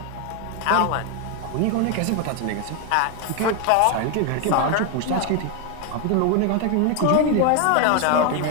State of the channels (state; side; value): different; both; correlation 0.01